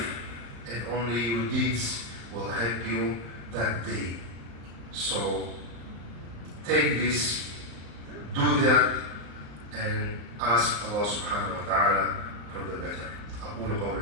and only your deeds will help you that day. So take this, do that, and ask Allah subhanahu wa ta'ala for the better. أقول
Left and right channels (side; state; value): left; late; 35 ms